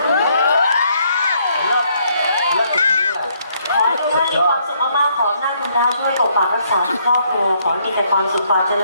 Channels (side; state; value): both; inverted; correlation -0.70